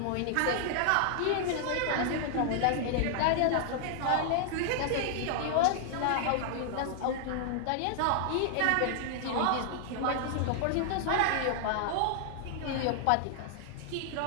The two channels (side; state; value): both; different; correlation 0.00